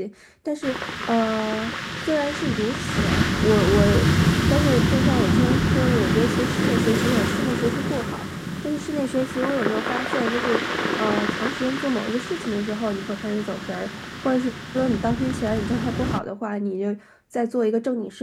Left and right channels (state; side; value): identical; both; correlation 1.00